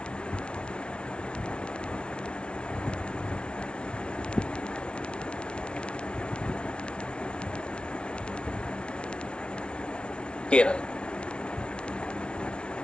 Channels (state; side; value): late; right; 0.058 ms